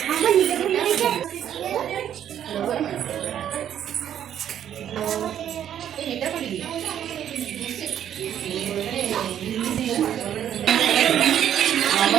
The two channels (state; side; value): quieter; left; 10.1 dB